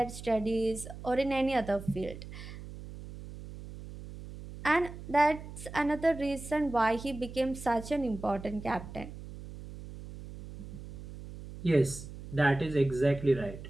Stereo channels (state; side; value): noise; right; hum, 13 dB below the sound